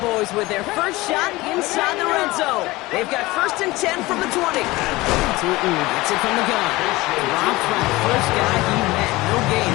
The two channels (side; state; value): right; quieter; 20.2 dB